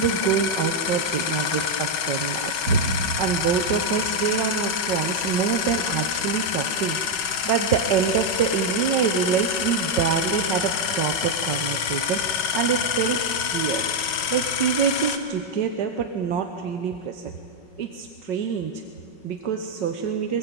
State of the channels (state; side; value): late; right; 5.4 ms